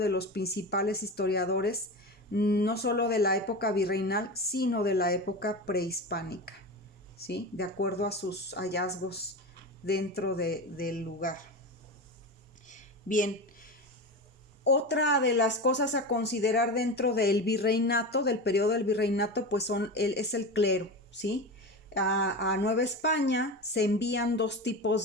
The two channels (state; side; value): normal; both; correlation 0.24